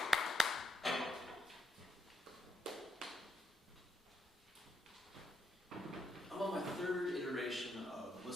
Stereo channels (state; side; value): normal; both; correlation 0.78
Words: I'm on my third iteration of